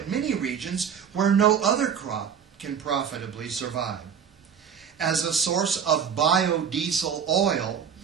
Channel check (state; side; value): quieter; left; 7.6 dB